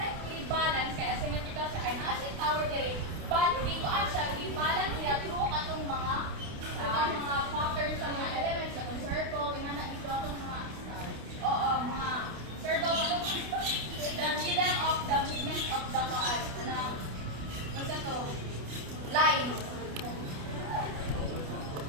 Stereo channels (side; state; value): left; late; 28 ms